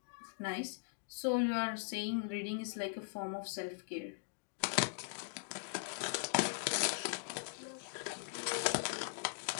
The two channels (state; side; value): silent; right; digital silence